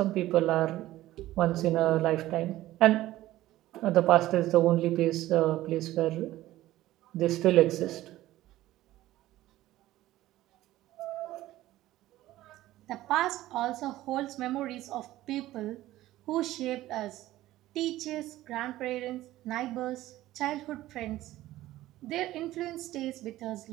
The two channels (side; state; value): left; quieter; 15.5 dB